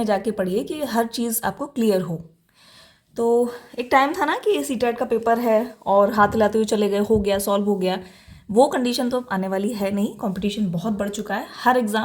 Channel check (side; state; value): both; identical; correlation 1.00